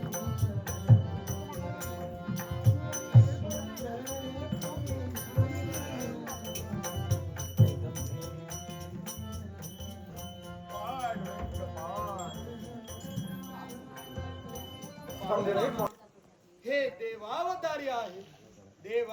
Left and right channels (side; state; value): both; identical; correlation 1.00